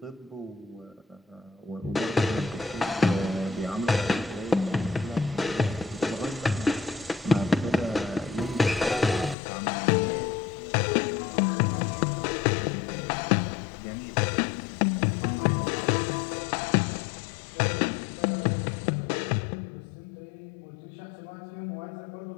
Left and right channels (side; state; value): right; drops out; at 9.3 s